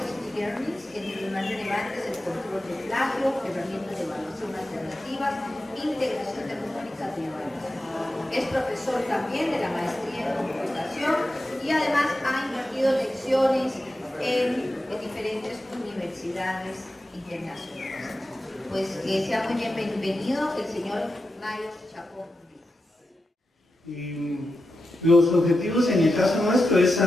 entre los más relevantes el control de plagio, herramientas de evaluación alternativas, integración tecnológica de evaluación. Es profesor también de la maestría en computación y además ha impartido lecciones en diferentes universidades internacionales. Pues que sea muy bienvenido el señor Mario Chacón. Los objetivos en el caso nuestro es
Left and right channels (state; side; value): normal; both; correlation 0.90